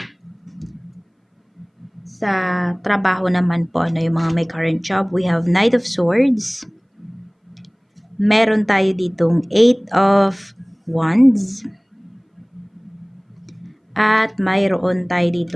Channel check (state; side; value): identical; both; correlation 1.00